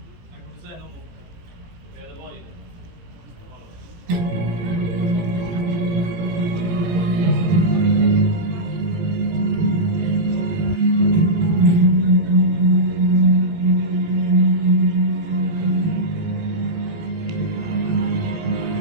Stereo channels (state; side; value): late; left; 18 ms